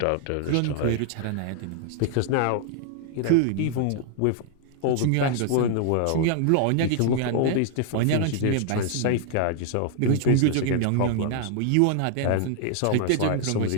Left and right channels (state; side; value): different; both; correlation 0.00